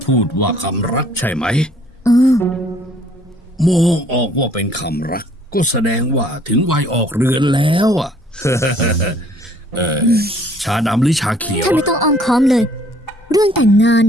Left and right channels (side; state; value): both; normal; correlation 0.59